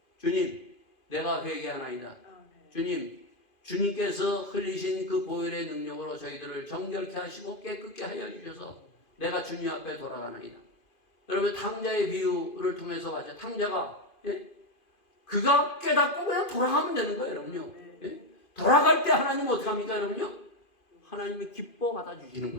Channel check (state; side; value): late; right; 2.5 ms